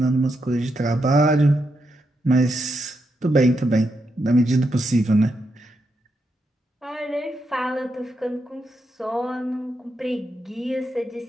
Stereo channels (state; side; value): normal; both; correlation 0.83